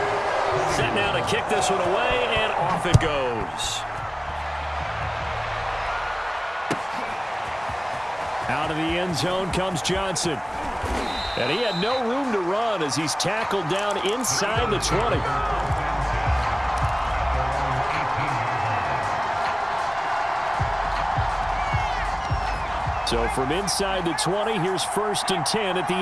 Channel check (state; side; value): identical; both; correlation 1.00